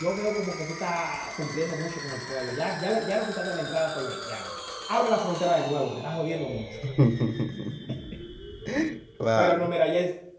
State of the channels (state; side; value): identical; both; correlation 1.00